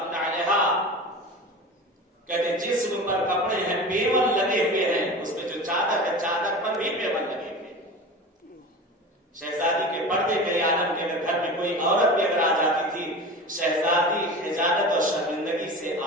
علیہا کہتے جسم پر کپڑے ہیں پیون لگے ہوئے ہیں, اس میں جو چادر ہے چادر پر بھی پیون لگے ہوئے ہیں. شہزادی کے پردے کے عالم کے اگر گھر میں کوئی عورت بھی اگر آ جاتی تھی, شہزادی خجالت اور شرمندگی سے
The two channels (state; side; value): normal; both; correlation 0.32